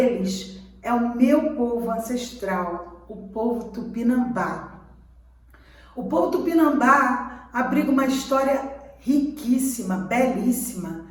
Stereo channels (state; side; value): identical; both; correlation 1.00